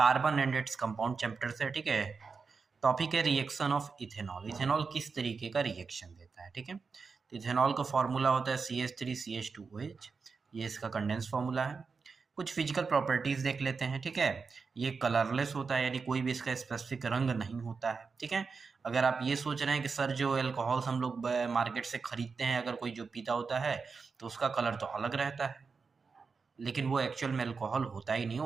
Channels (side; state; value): left; quieter; 4.9 dB